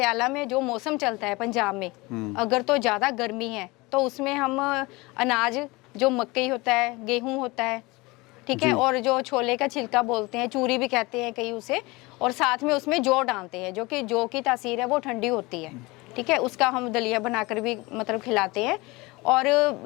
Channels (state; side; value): quieter; right; 23.4 dB